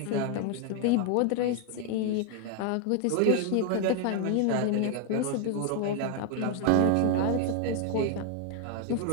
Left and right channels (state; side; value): different; both; correlation 0.00